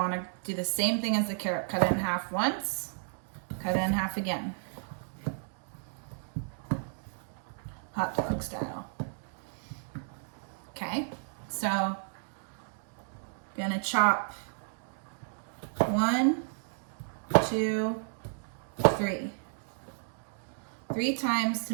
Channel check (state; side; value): silent; left; digital silence